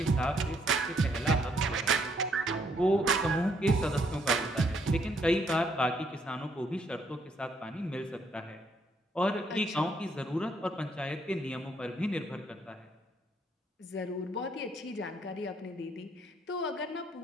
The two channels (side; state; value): both; normal; correlation 0.71